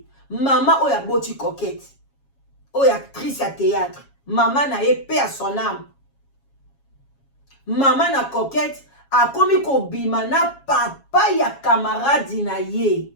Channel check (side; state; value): right; late; 7.3 ms